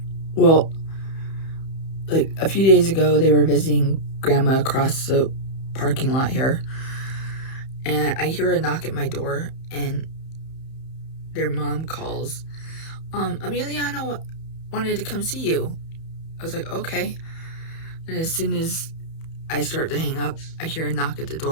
Well, like a few days ago, they were visiting grandma across the parking lot here. And I hear a knock at my door, and their mom calls, Emiliano wanted to come see you. I was like, okay. And as soon as I start to hang up, I hear a knock at the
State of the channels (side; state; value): right; late; 31 ms